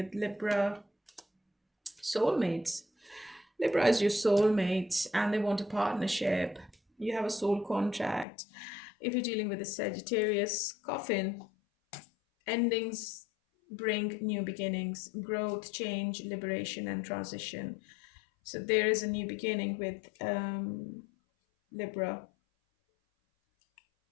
Libra, soulmates. Libra is your soulmate and they want a partnership. You have a soul contract. If you're dealing with a Sagittarius, coffin, endings bring new beginnings, growth, change, liberation, and transition. So there is a new beginning with Libra.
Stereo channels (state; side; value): drops out; right; at 8.2 s